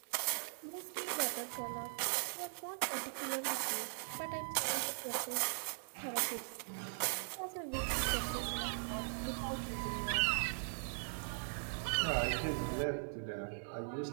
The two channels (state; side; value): silent; left; 51 dB below the other